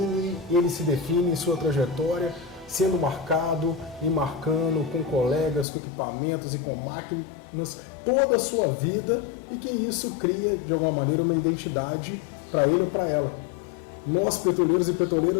ele se define em sua trajetória, sendo marcado e marcando com colegas, com equipamentos e com máquinas toda a sua vida, e que isso cria de alguma maneira uma identidade para ele ou para ela. Nós, petroleiros e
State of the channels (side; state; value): right; drops out; at 5.7 s